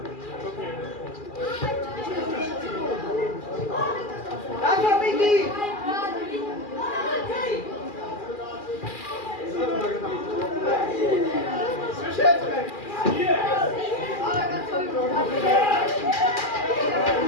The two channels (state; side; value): late; right; 2.4 ms